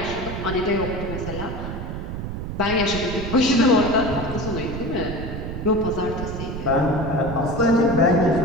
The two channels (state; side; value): noise; right; rumble, 6 dB below the sound